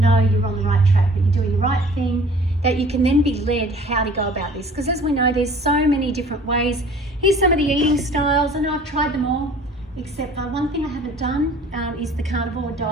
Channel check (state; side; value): normal; both; correlation 0.49